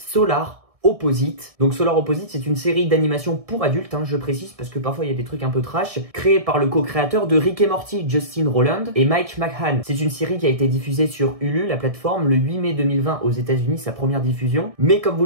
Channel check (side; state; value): left; late; 1.6 ms